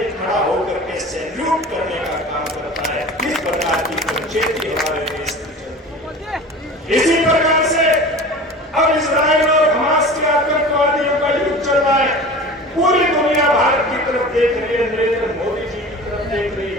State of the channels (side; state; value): both; normal; correlation 0.37